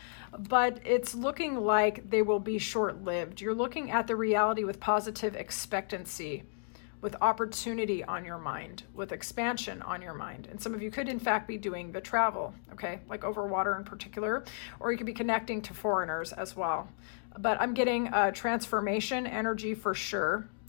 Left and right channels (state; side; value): silent; right; digital silence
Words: but it's looking like they will be short-lived. You're looking at the reality with positive expectancy, with opportunity on your mind, with expansion on your mind. And some of you could in fact be doing the travel, okay, like over water in particular, or you could be connecting to foreigners as well. But I'm getting transformation energy for sure.